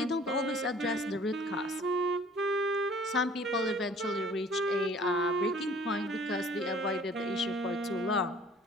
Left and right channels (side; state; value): both; normal; correlation 0.52